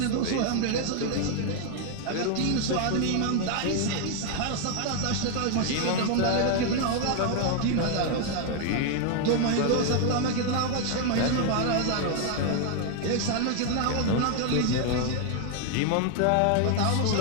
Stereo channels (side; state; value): both; different; correlation 0.00